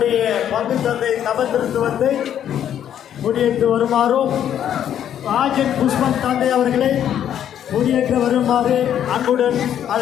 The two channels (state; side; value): quieter; right; 10.1 dB